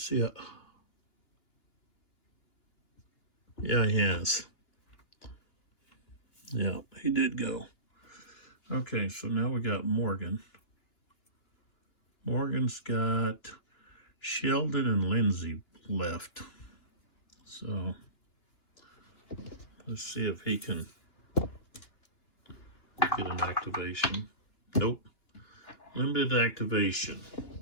see. Yeah, he has. Yeah, he did go. Okay, so now we got Morgan. Morgan's got Sheldon and Lindsay left. So let's see if he can get an activation. Nope. Limited activation.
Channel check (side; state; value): right; late; 2.9 ms